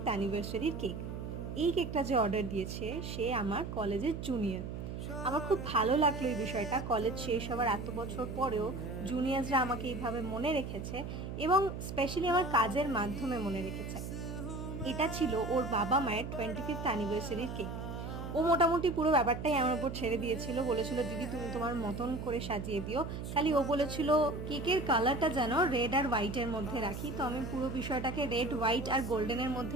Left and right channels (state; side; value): noise; right; hum, 6 dB below the sound